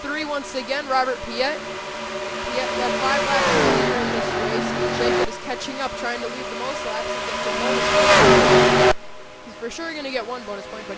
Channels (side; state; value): both; identical; correlation 1.00